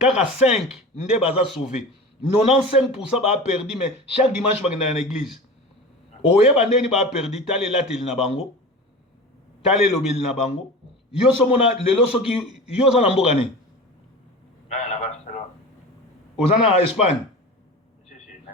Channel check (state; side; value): normal; both; correlation 0.32